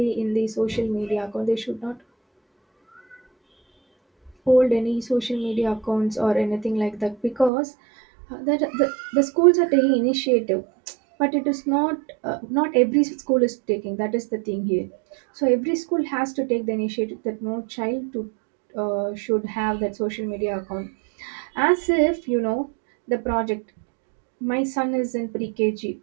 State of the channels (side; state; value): left; drops out; at 7.5 s